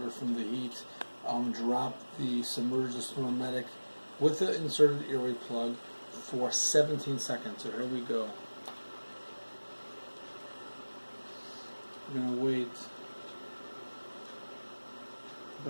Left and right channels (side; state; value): both; inverted; correlation -1.00